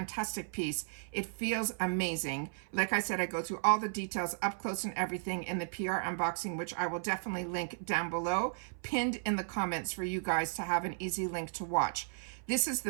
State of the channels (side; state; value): left; silent; 55 dB below the other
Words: piece. It feels amazing. Like I said, I go through all the details up close and everything in the PR unboxing, which I will definitely link down below, pinned in the comments for you guys to have an easy link to watch. This is